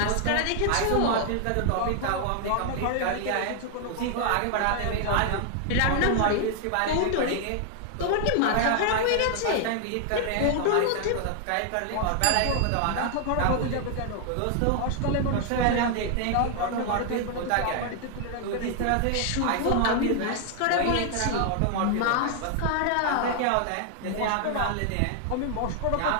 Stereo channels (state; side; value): different; both; correlation 0.00